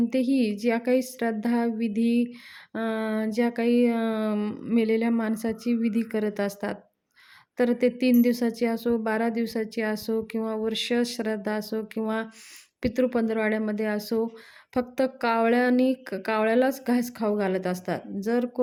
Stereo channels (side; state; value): both; identical; correlation 1.00